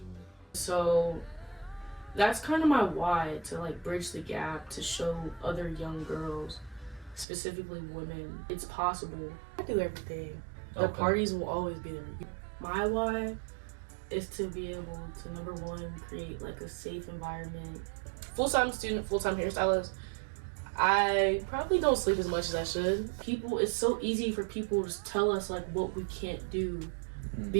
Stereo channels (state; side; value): drops out; left; at 7.2 s